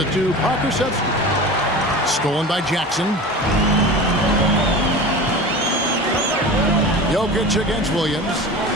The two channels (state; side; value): normal; both; correlation 0.33